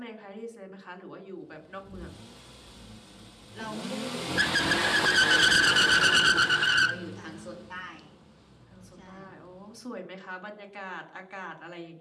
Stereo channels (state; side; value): identical; both; correlation 1.00